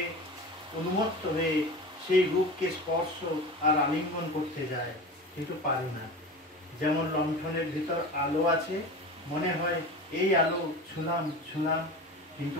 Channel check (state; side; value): normal; both; correlation 0.31